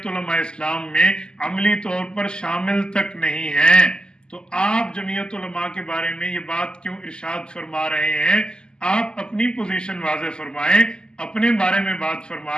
علماء اسلام میں عملی طور پر شامل تک نہیں ہیں، تو آپ جمعیت علماء کے بارے میں یہ بات کیوں ارشاد فرما رہے ہیں؟ آپ اپنی پوزیشن واضح فرمائیں، اپنے بارے میں بات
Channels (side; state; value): right; late; 0.047 ms